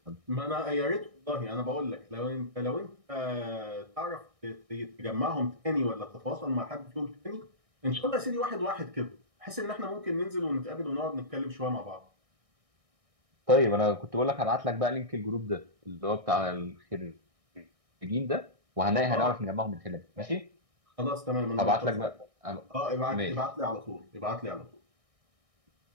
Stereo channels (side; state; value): left; late; 1.6 ms